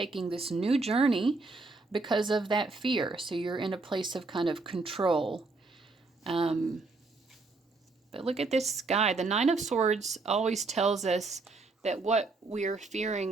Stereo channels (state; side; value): quieter; left; 3.6 dB